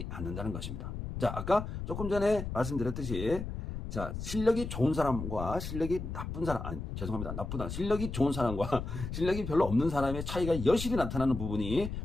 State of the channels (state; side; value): noise; left; rumble, 6 dB below the sound